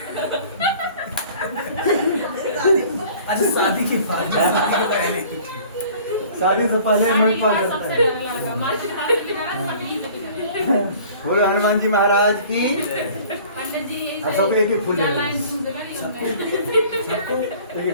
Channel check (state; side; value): inverted; both; correlation -0.49